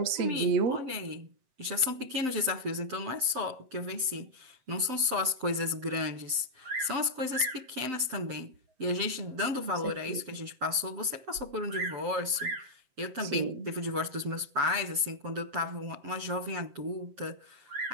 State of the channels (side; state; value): left; late; 7.8 ms